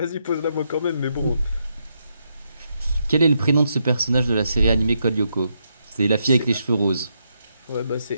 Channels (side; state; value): both; inverted; correlation -0.80